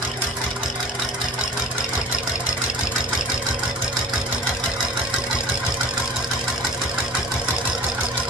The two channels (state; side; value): normal; both; correlation 0.42